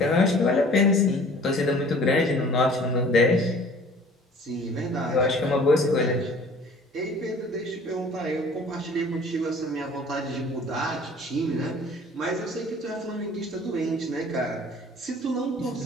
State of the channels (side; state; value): both; normal; correlation 0.49